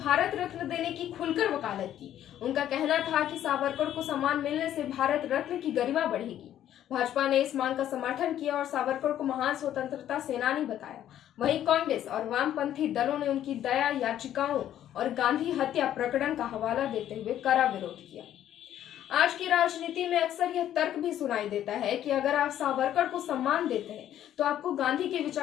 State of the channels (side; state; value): right; quieter; 11.4 dB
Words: रत्न देने की खुलकर वकालत की। उनका कहना था कि सावरकर को सम्मान मिलने से भारत रत्न की गरिमा बढ़ेगी। भाजपा ने इस मांग का समर्थन किया और सावरकर को महान स्वतंत्रता सेनानी बताया। वहीं कांग्रेस और वामपंथी दलों ने उनकी दया याचिकाओं और गांधी हत्या प्रकरण का हवाला देते हुए कड़ा विरोध किया। आज की राजनीति में अक्सर यह तर्क भी सुनाई देता है कि अगर आप सावरकर को सम्मान देते हैं तो आपको गांधी की